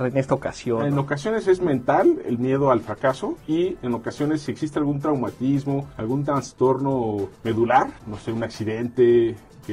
en esta ocasión? En ocasiones es mental, el miedo al fracaso, y en ocasiones si existe algún traumatismo, algún trastorno medular, no sé, un accidente,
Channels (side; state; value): both; identical; correlation 1.00